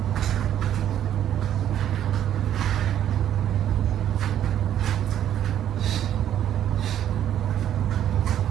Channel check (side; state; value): left; quieter; 10.8 dB